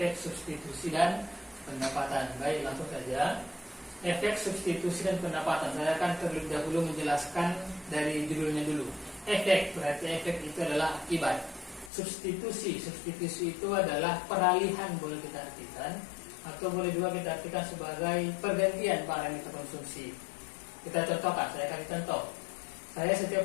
substitusi dan pendapatan. Baik, langsung saja. Efek substitusi dan pendapatan. Saya akan terlebih dahulu menjelaskan dari judulnya dulu. Efek, berarti efek itu adalah akibat. Substitusi itu adalah peralihan, boleh kita artikan, atau boleh juga kita artikan sebagai pergantian barang yang kita konsumsi. Kita contohkan, saya kasih contoh. Saya setiap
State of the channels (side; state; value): right; drops out; at 11.9 s